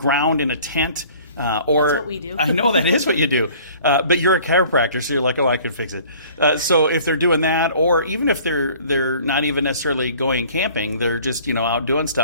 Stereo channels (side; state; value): both; inverted; correlation -0.51